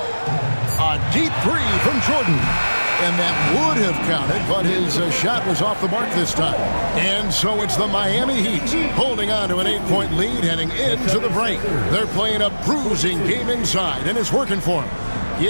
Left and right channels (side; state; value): both; inverted; correlation -1.00